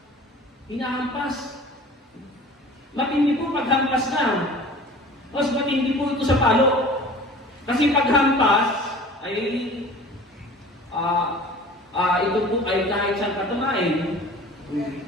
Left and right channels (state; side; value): normal; both; correlation 0.43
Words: Hinahampas. Matindi po paghampas na. Mas matindi po ito sa palo. Kasi paghampas ay ito po ay kahit saan katamain.